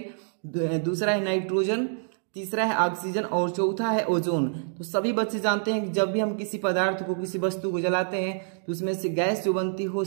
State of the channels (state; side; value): silent; left; digital silence